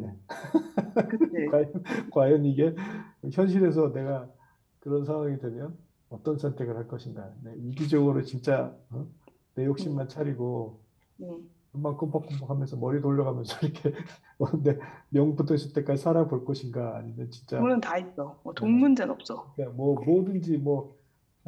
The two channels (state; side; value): identical; both; correlation 1.00